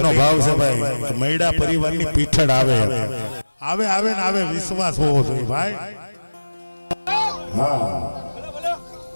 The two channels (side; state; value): both; inverted; correlation -1.00